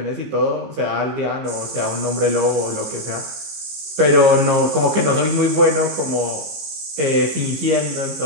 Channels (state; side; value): late; left; 15 ms